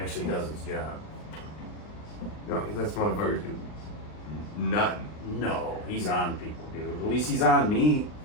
does his job. No, he lets motherfuckers do nothing. No, he's on people, dude. At least he's on me.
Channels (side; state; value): right; late; 39 ms